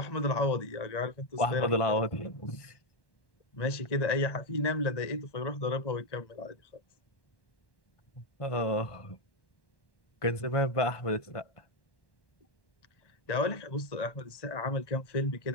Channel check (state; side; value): late; right; 1.1 ms